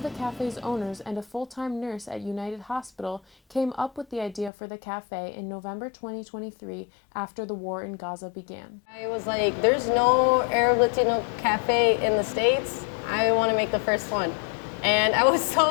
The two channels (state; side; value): drops out; right; at 4.5 s